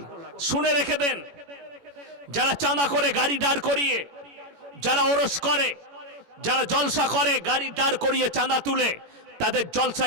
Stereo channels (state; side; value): late; left; 18 ms